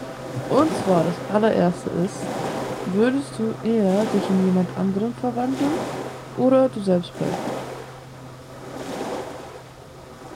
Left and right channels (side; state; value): both; identical; correlation 1.00